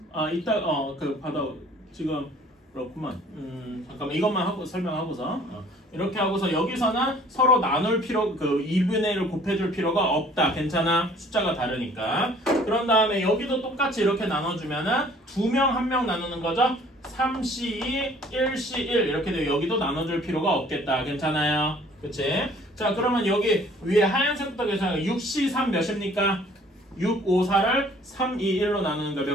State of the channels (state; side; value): normal; both; correlation 0.55